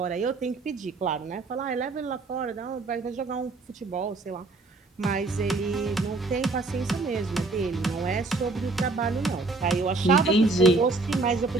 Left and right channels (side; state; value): left; quieter; 3.5 dB